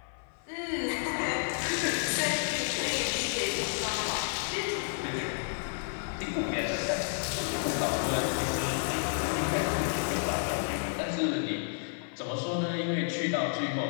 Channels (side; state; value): right; silent; 57 dB below the other